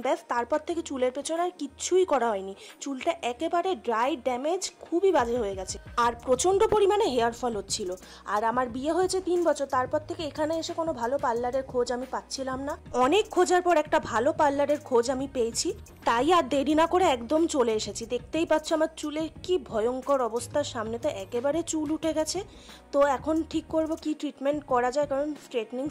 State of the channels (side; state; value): both; identical; correlation 1.00